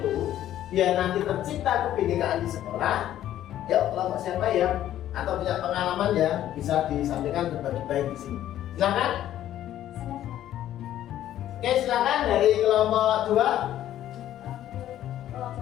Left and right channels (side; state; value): right; quieter; 12.3 dB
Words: biar nanti tercipta kebinekaan di sekolah, ya kelompok siapa ya atau punya pengalaman ya bisa disampaikan berbagi baik di sini. Silakan. Oke, silakan dari kelompok 2.